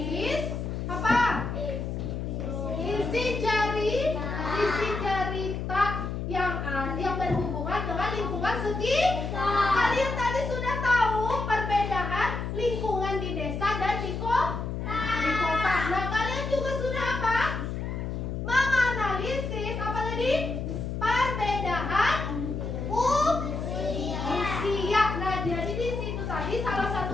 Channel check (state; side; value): noise; left; hum, 4 dB below the sound